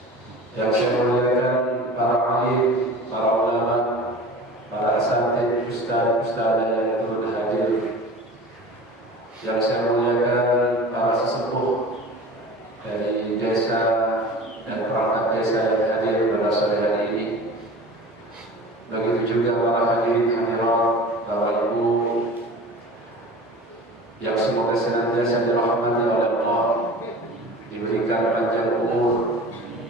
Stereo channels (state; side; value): normal; both; correlation 0.38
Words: Yang saya muliakan para alim, para ulama, para asatidz, ustaz-ustazah yang turut hadir. Yang saya muliakan para sesepuh dari desa dan perangkat desa yang hadir pada sore hari ini. Begitu juga para hadirin hadirat, Bapak Ibu, yang semoga senantiasa dirahmati oleh Allah, diberikan panjang umur,